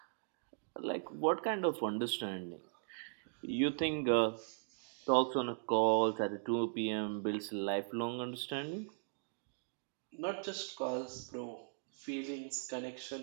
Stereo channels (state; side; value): silent; left; digital silence